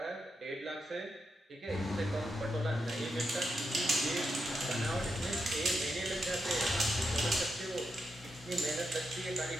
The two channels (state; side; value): normal; both; correlation 0.85